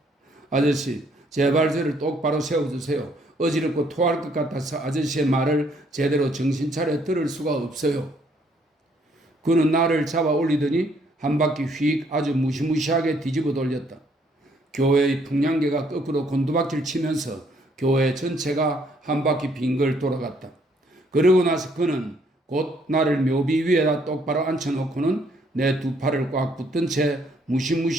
아저씨, 제발 저를 똑바로 세워주세요. 어지럽고 토할 것 같아서 아저씨의 말을 제대로 정신 차려 들을 수가 없어요. 그는 나를 잡아 올리더니 한 바퀴 휙 아주 무시무시하게 뒤집어 돌렸다. 교회의 풍량계가 거꾸로 곤두박질 치면서 교회 전체가 한 바퀴 빙글 돌아갔다. 그러고 나서 그는 곧 나를 묘비 위에다 똑바로 앉혀놓고는 내 두 팔을 꽉 붙든 채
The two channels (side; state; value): both; normal; correlation 0.67